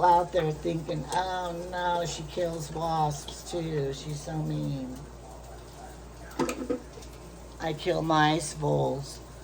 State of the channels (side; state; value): both; identical; correlation 1.00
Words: out there thinking, oh no, she kills wasps too. She's so mean. I kill mice, voles.